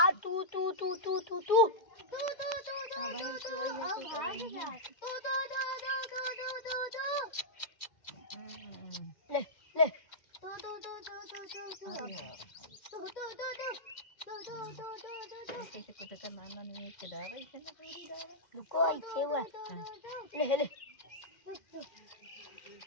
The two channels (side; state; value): right; late; 2.1 ms